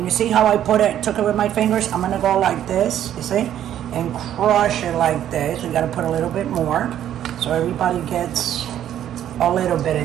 you see how I took it with my fingers? I'm gonna go like this, you see? And crush it like this. We gotta put a little bit more, so everybody gets a little bit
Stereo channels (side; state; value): left; quieter; 11.0 dB